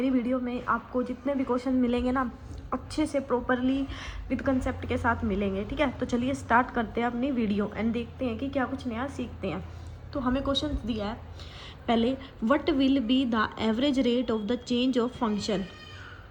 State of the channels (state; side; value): identical; both; correlation 1.00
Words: वीडियो में आपको जितने भी क्वेश्चन मिलेंगे ना, अच्छे से प्रॉपरली विद कंसेप्ट के साथ मिलेंगे, ठीक है। तो चलिए स्टार्ट करते हैं अपनी वीडियो एंड देखते हैं कि क्या कुछ नया सीखते हैं। तो हमें क्वेश्चन दिया है पहले, what will be the average rate of the change of function.